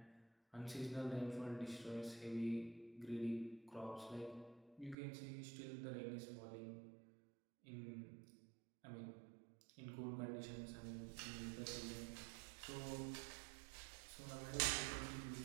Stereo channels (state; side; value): drops out; left; at 5.0 s